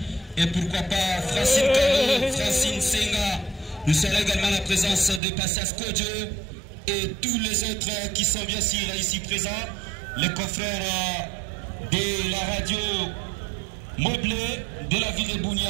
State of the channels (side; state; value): left; drops out; at 5.2 s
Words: Et pourquoi pas Francine Caro, Francine Senga. Nous serons également la présence de Passas Kodjo et tous les autres qui sont bien sûr ici présents. Les confrères de la radio Moblé de la ville de